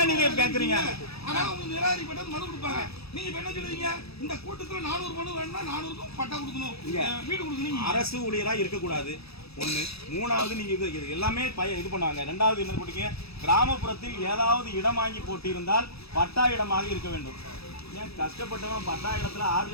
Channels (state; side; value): late; right; 0.78 ms